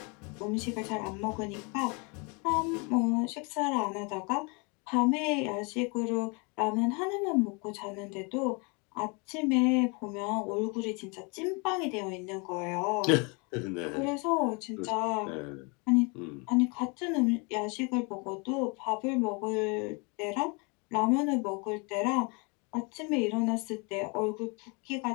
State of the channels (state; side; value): quieter; right; 31.4 dB